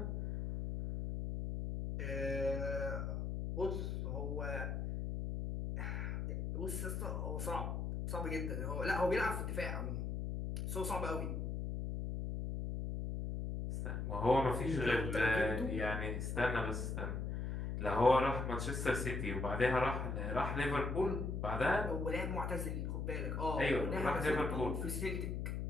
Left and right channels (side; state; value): left; noise; hum, 2 dB below the sound